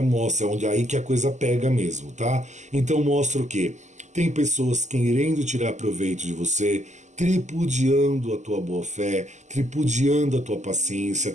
mostra, onde é aí que a coisa pega mesmo, tá? Então mostra o quê? Tem pessoas querendo tirar proveito de você, tripudiando a tua boa fé, tripudiando a tua paciência,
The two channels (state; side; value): late; left; 0.34 ms